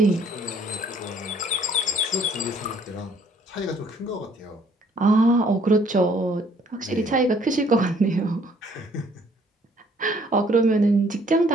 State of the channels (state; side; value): normal; both; correlation 0.61